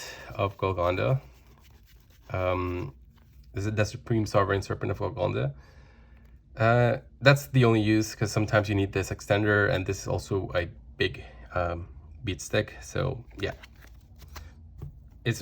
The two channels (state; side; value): identical; both; correlation 1.00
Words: of Golgonda. This is the Supreme Sovereign Serpent of Golgonda. That's the only use, because sometimes you need this extender, and this is also a big beat stick. So yeah, it's